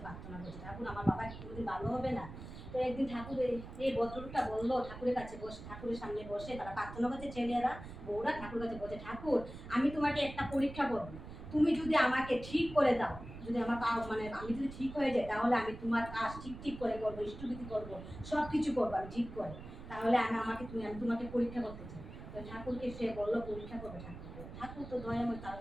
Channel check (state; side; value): noise; right; rumble, 12 dB below the sound